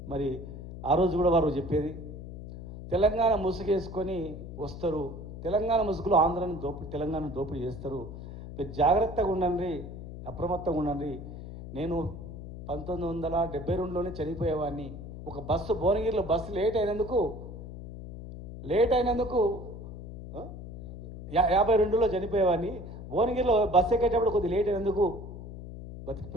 మరి ఆ రోజు కూడా వారు చెప్పేది, తెలంగాణ ముసుగేసుకొని వస్తారు, తెలంగాణ ముసుగులో ఆంధ్రాను తెలంగాణ దోపిడీ చేస్తారు, మీరు జాగ్రత్తగా ఉండండి, అప్రమత్తంగా ఉండండి. నేను 1972లోనే చనిపోయేవాడిని. ఒక బస్సు భువనగిరిలో బస్సు లేట్ అయినందుకు 52లో చనిపోయేవాడిని. భువనగిరిలో బస్సు ఎక్కేటప్పుడు కొద్దిగా లేట్ అయినందుకు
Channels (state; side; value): noise; left; hum, 11 dB below the sound